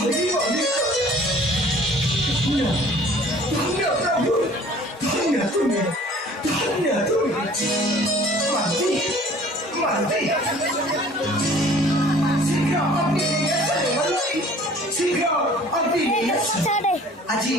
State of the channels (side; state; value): both; normal; correlation 0.50